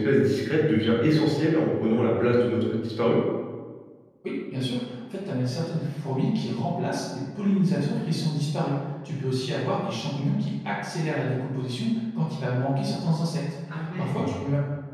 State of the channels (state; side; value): identical; both; correlation 1.00